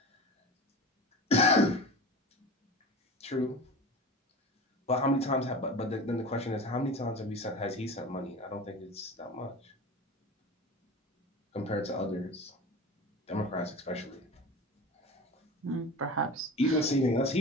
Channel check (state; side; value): normal; both; correlation 0.33